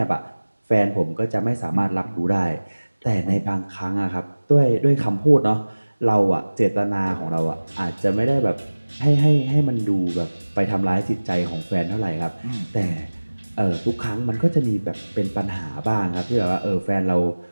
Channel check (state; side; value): inverted; both; correlation -1.00